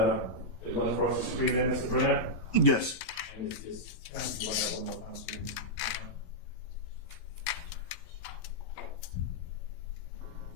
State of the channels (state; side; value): late; right; 11 ms